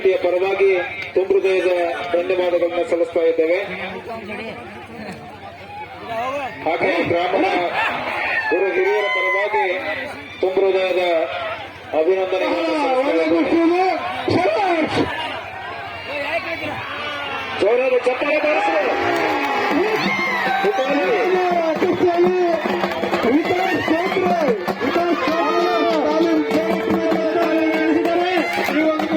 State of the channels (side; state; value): both; identical; correlation 1.00